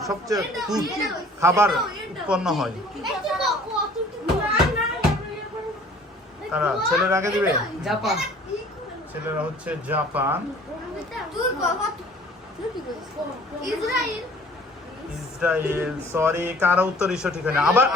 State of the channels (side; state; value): both; normal; correlation 0.51